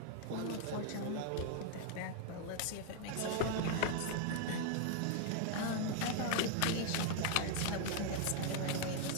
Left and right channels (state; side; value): different; both; correlation 0.00